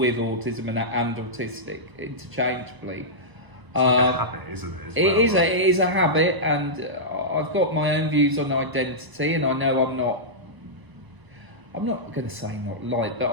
autism and autistic interchangeably. It's like a habit, isn't it? As well, It is a habit, and I've got my own views on identity, and I know I'm not going to say not like, but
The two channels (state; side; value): late; left; 1.0 ms